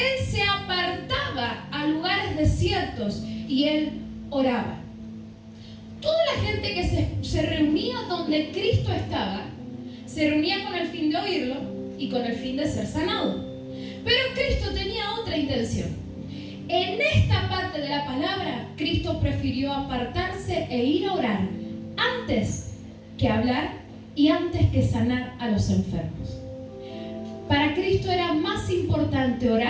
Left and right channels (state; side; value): identical; both; correlation 1.00